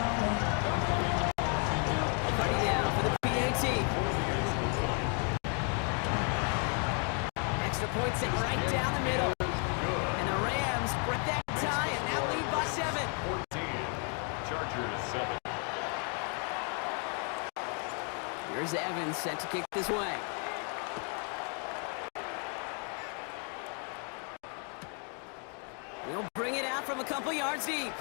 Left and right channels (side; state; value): right; quieter; 39.7 dB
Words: Party down for the PAT. Extra point set right down the middle. And the Rams break that tie and now lead by 7. 14. Chargers 7. Here's Evans set to kick this way. He'll bring it out from a couple yards deep.